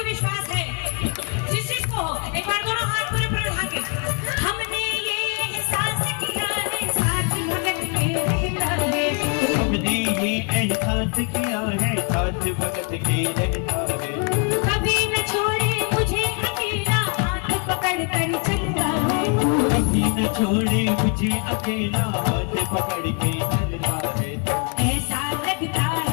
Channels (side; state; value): right; quieter; 36.3 dB